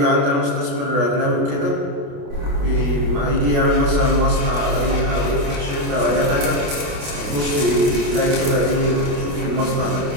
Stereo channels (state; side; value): late; left; 28 ms